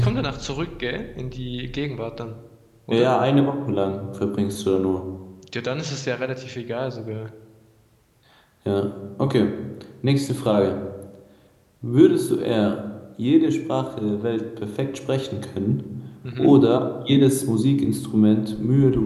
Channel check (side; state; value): both; identical; correlation 1.00